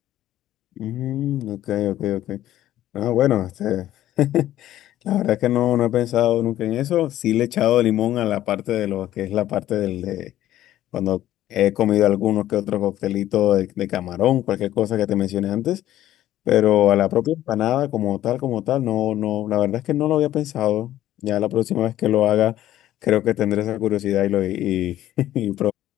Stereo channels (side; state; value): right; quieter; 13.3 dB